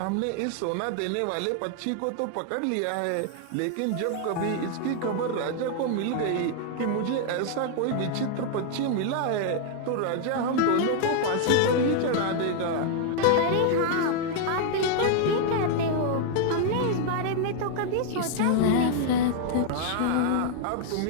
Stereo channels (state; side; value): different; both; correlation 0.00